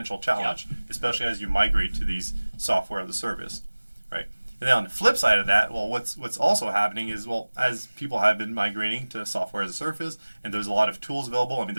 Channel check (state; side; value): inverted; both; correlation -1.00